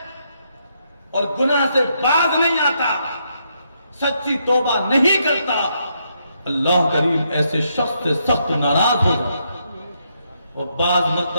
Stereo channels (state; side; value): inverted; both; correlation -0.77